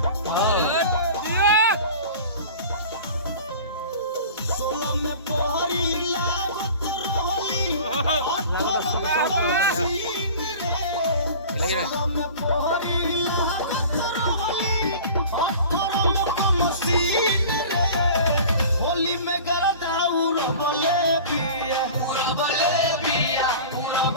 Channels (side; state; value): both; inverted; correlation -0.40